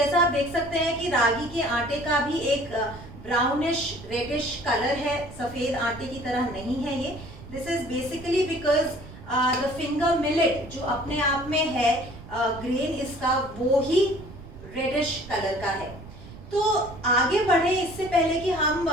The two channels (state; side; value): noise; right; rumble, 16 dB below the sound